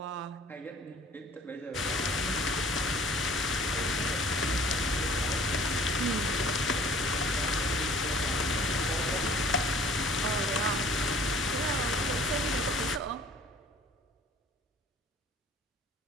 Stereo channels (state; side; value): normal; both; correlation 0.52